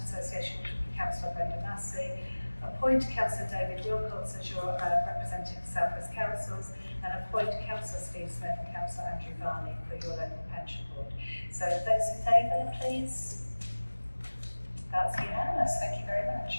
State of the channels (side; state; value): both; inverted; correlation -1.00